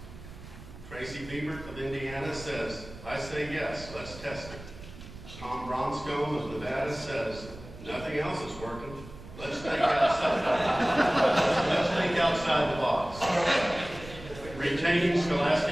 Tracy Biebert of Indiana says, I say yes, let's test it. Tom Bronscombe of Nevada says, nothing else is working. Let's think outside. Let's think outside the box. Retaining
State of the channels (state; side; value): noise; right; rumble, 15 dB below the sound